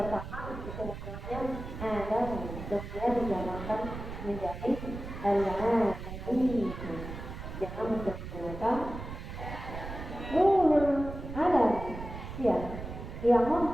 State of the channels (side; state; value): right; noise; rumble, 9 dB below the sound